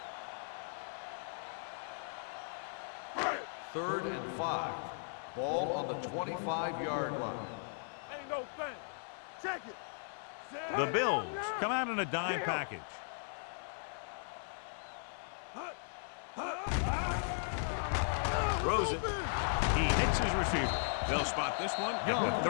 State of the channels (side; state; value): right; silent; 53 dB below the other